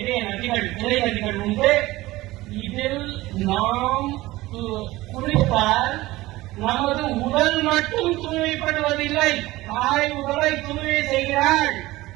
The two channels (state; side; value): quieter; left; 18.5 dB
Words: நதிகள், கிளை நதிகள் உண்டு. இதில் நாம் குளித்தால் நமது உடல் மட்டும் தூய்மைப்படுவதில்லை, தாய் உடலை தூய்மை செய்கிறாள்.